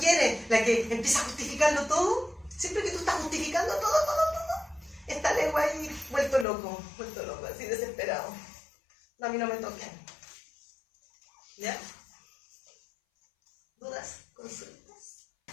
la que empieza a justificarlo todo. Siempre que tú estás justificando todo, está el ego ahí vuelto loco, así desesperado. No, a mí no me toquen. ¿Ya? ¿Dudas? ¿Consultas?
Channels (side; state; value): right; drops out; at 6.5 s